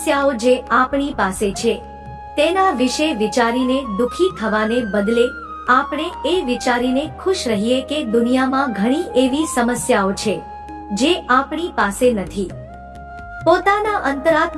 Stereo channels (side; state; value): both; identical; correlation 1.00